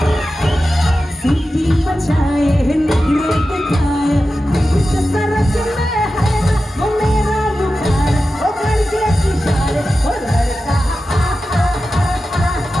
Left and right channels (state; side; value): normal; both; correlation 0.93